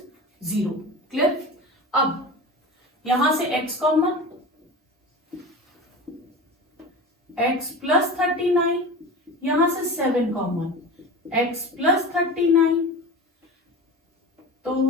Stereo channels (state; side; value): normal; both; correlation 0.31